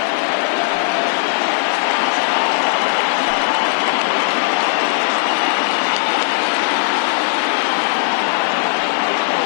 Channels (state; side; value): quieter; right; 40.0 dB